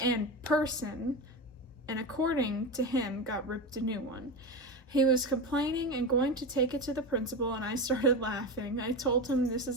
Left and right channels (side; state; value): both; normal; correlation 0.21